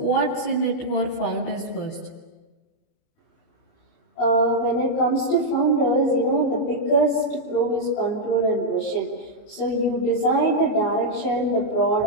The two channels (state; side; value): late; right; 28 ms